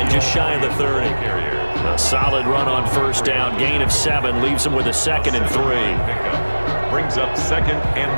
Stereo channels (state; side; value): inverted; both; correlation -1.00